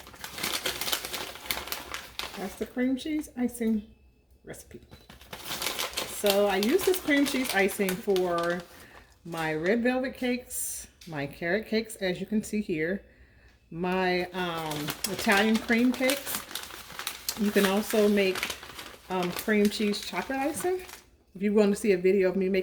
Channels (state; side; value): identical; both; correlation 1.00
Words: That's the cream cheese icing recipe. So I use this cream cheese icing for my red velvet cakes, my carrot cakes, as you can see here, my Italian cream cakes. You can also make cream cheese chocolate icing. If you want to see a video of me